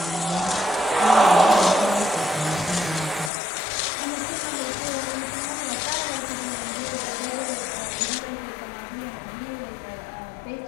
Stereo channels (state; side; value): drops out; right; at 3.3 s